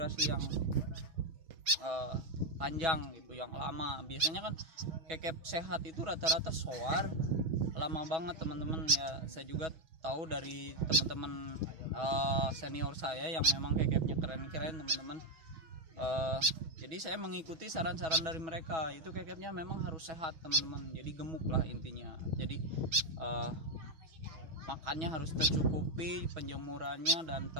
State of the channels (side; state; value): left; late; 6.2 ms